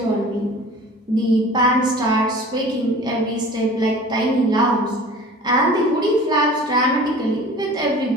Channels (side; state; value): both; normal; correlation 0.43